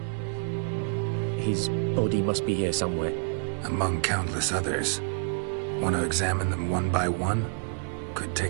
his body must be here somewhere. Among countless others. Want to examine them one by one? Could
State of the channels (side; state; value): left; silent; 57 dB below the other